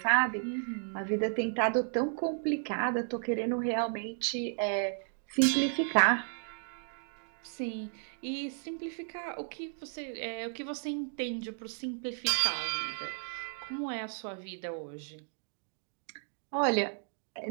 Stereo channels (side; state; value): left; silent; digital silence